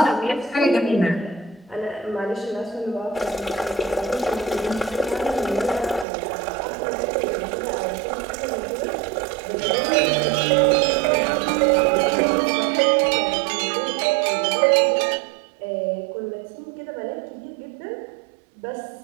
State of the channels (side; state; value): left; drops out; at 6.1 s